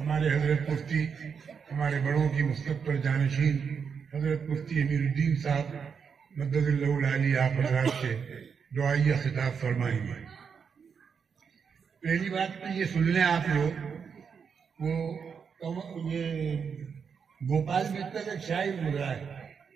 حضرت مفتی ہمارے بڑوں کی مستقبل جانشین حضرت مفتی امیر الدین صاحب مدد اللہ العالی آپ حضرات سے دعائیہ خطاب فرمائیں گے. پہلی بات تو یہ سن لیں آپ لوگ وہ یہ گوپال متل ایک شاعر گزرا ہے.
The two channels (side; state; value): left; quieter; 6.4 dB